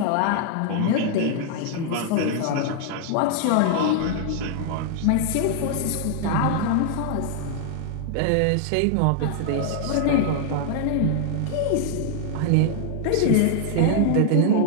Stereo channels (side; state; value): both; different; correlation -0.01